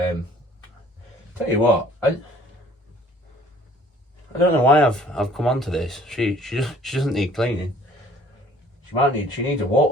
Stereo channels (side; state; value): both; normal; correlation 0.55